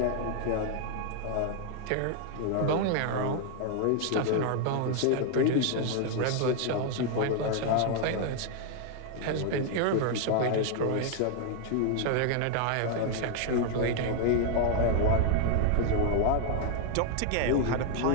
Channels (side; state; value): both; different; correlation 0.00